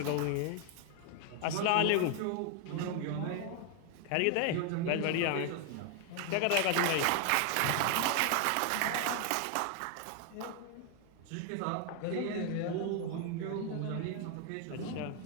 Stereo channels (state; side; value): different; both; correlation 0.01